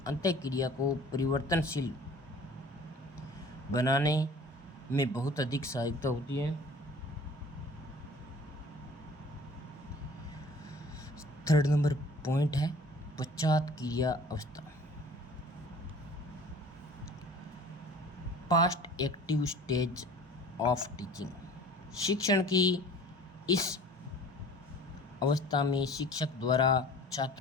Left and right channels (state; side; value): normal; both; correlation 0.47